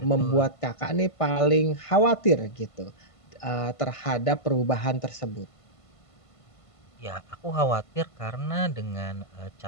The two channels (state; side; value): late; right; 1.5 ms